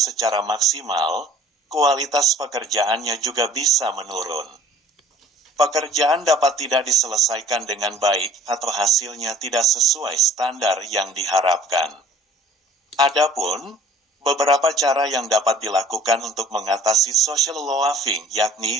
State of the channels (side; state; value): both; normal; correlation 0.52